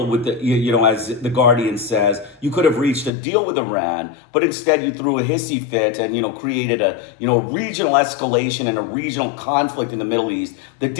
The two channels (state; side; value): drops out; right; at 3.1 s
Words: with the, as the Guardian says, you could have reached a deal with Iran, but instead you threw a hissy fit and, created a, regional escalation and a regional conflict in the Middle East that